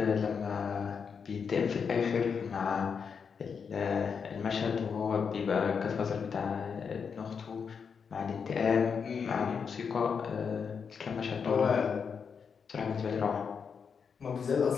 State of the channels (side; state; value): right; quieter; 6.2 dB